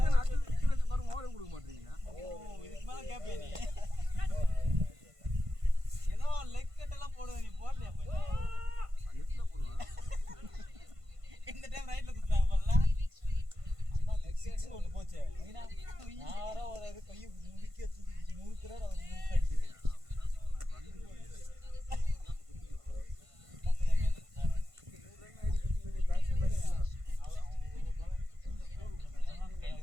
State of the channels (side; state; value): left; late; 1.5 ms